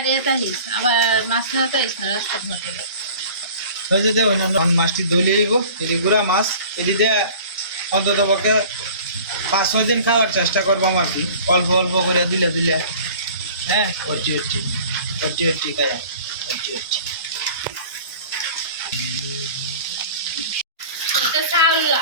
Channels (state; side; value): inverted; both; correlation -0.44